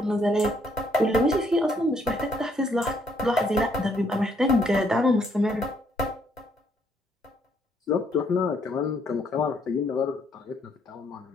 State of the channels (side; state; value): both; normal; correlation 0.69